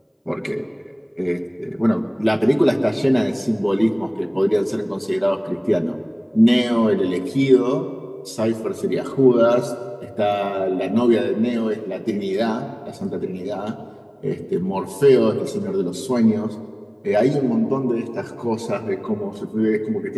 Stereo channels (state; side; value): identical; both; correlation 1.00